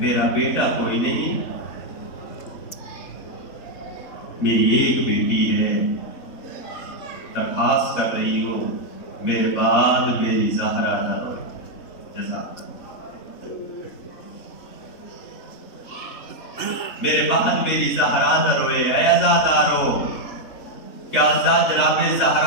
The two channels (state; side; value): late; right; 3.8 ms